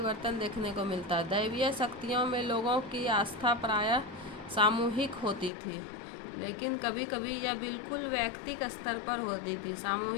देखने को मिलता है। दैवीय शक्तियों में लोगों की आस्था प्रायः सामूहिक होती थी, लेकिन कभी कभी यह बिल्कुल व्यक्तिगत स्तर पर होती थी।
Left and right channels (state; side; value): drops out; right; at 5.5 s